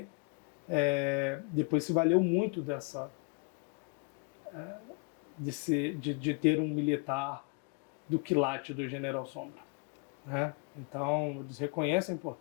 depois se valeu muito de ter um militar do quilate do General Sombra, né? Então, eles reconhecem a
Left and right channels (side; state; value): right; quieter; 33.2 dB